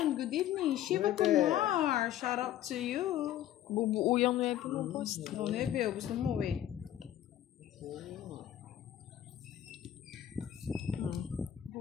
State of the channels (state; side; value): quieter; right; 11.8 dB